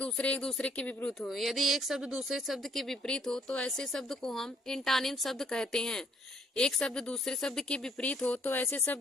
दूसरे के विपरीत हो। यदि एक शब्द दूसरे शब्द के विपरीत हो तो ऐसे शब्द को हम एंटानिम शब्द कहते हैं। एक शब्द दूसरे शब्द के विपरीत हो तो ऐसे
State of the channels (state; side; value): normal; both; correlation 0.65